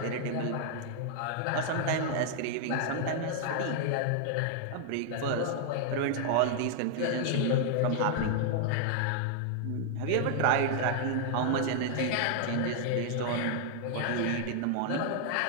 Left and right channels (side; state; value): both; different; correlation 0.00